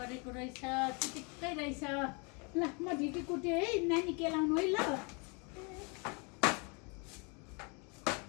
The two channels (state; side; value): quieter; right; 32.8 dB